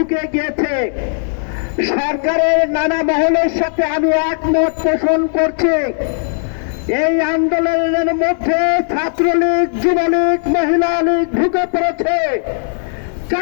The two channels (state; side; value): silent; right; digital silence